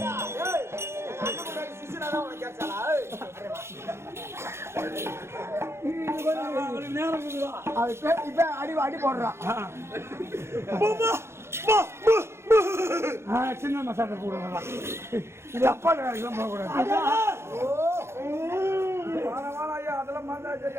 இப்ப அடி அடி போடுறான். சின்ன மசாலா போடுறதா இது அப்பா வேலைக்கெல்லாம் போகக்கூடாது. அதெல்லாம்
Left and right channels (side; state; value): left; late; 0.13 ms